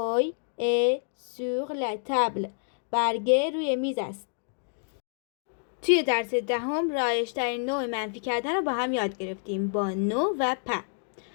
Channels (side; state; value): right; silent; digital silence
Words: est sur la table. برگه روی میز است. توی درس دهم رایج‌ترین نوع منفی کردن رو با هم یاد گرفتیم با نو و پ.